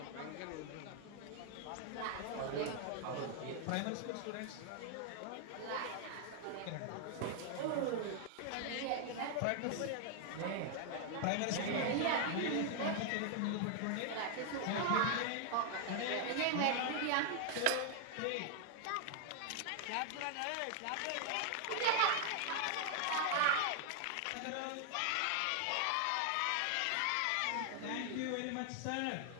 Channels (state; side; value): different; both; correlation 0.00